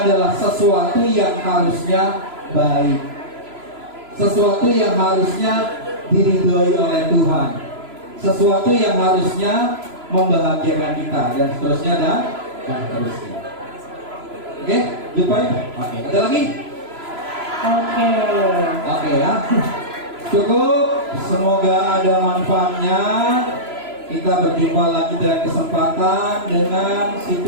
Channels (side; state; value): left; late; 3.0 ms